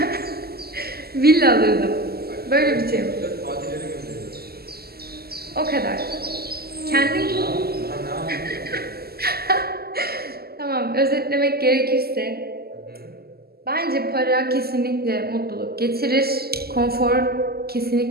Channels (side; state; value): left; late; 0.46 ms